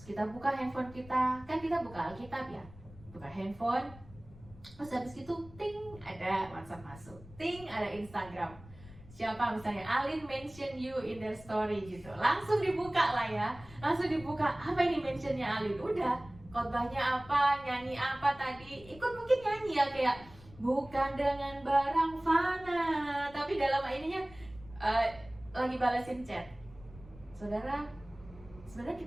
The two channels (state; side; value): noise; left; rumble, 20 dB below the sound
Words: kita buka handphone kita, kan kita buka Alkitab ya, buka handphone, terus habis itu ting ada WhatsApp masuk, ting ada Instagram. Siapa misalnya Alin mention you in their story gitu, langsung dibuka lah ya, langsung dibuka, apa ini mentionnya Alin, udah khotbahnya apa, nyanyi apa tadi, ikut mungkin nyanyi ya, kayak bukan dengan barang fana, tapi dalam ininya lagi balasin chat. Saudara, sebenarnya